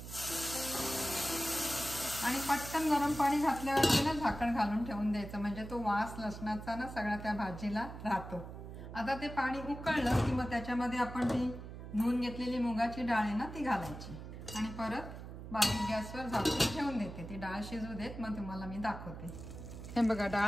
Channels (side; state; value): right; noise; hum, 11 dB below the sound